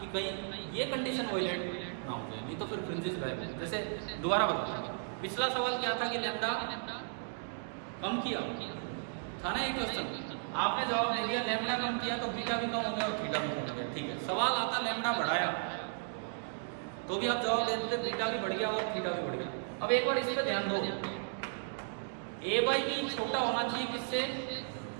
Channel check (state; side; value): silent; left; digital silence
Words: कहीं ये कंडीशन वायलेट ना हो जाए, नहीं तो फिर फ्रिंजेस गायब। जैसे दोबारा बताओ, पिछला सवाल क्या था कि लैम्डा कम किया था ना, एक क्वेश्चन आपने जवाब दे दिया लैम्डा कम किया तो बीटा भी कम हो गया और थीटा भी कम हो गया, ठीक है। सवाल आता लैम्डा बढ़ाया तो भी आप जवाब दे देते बीटा भी बढ़ गया और थीटा भी बढ़ गया। अब एक बार इस पे ध्यान दो, ए बाई बी छोटा होना चाहिए किससे,